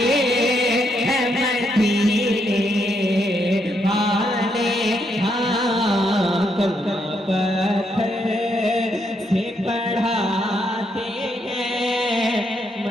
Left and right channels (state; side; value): normal; both; correlation 0.77